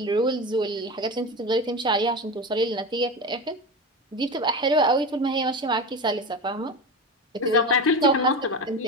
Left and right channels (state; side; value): normal; both; correlation 0.24